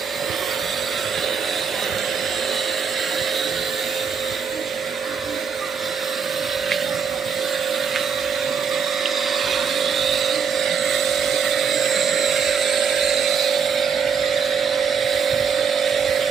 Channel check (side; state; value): left; quieter; 6.3 dB